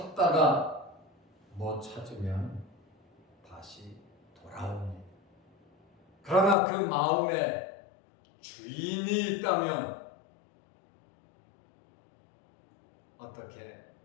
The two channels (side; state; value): right; drops out; at 6.6 s